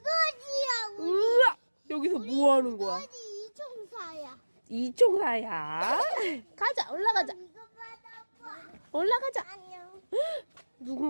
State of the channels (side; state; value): both; inverted; correlation -1.00